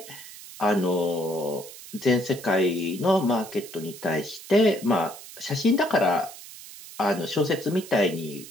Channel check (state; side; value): noise; right; hiss, 15 dB below the sound